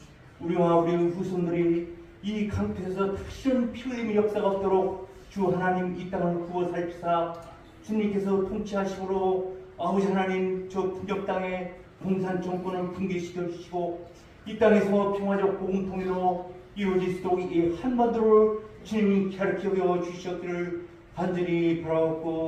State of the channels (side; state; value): both; identical; correlation 1.00